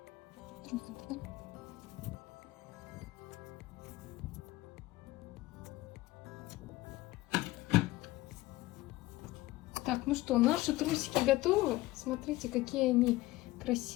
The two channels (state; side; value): quieter; right; 18.2 dB